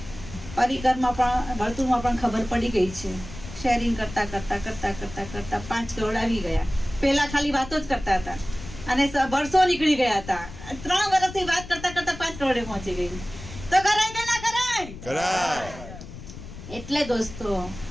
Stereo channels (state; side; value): noise; left; rumble, 13 dB below the sound